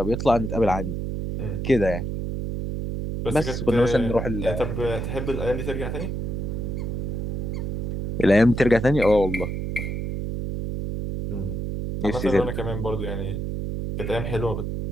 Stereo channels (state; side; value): noise; right; hum, 3 dB below the sound